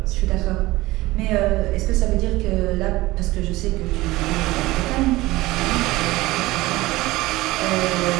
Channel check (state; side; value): quieter; left; 19.1 dB